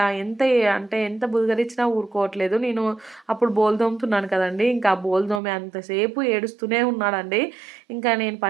ఎంత బుదగరించినా ఊరుకోవట్లేదు. నేను అప్పుడు బోలు తోముతున్నాను కదండీ! ఇంకా ఆ బోలు తోమే అంతసేపు ఏడుస్తూనే ఉన్నాడండి. ఇంకా నేను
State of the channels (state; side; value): drops out; left; at 5.4 s